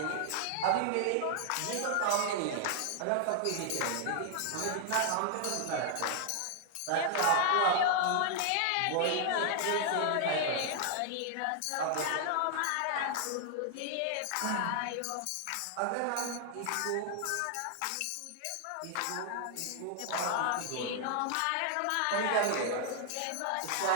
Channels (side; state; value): both; different; correlation 0.00